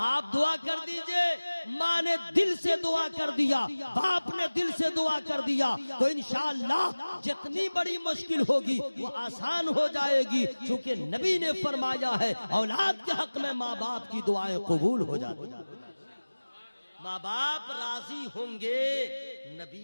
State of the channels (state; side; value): inverted; both; correlation -1.00